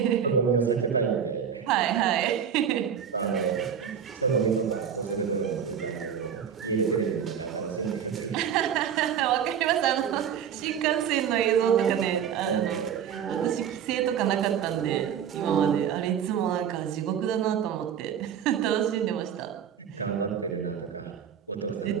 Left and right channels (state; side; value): quieter; left; 8.3 dB